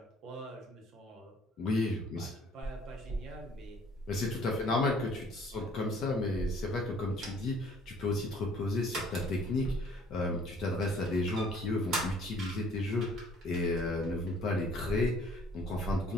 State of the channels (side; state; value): both; normal; correlation 0.57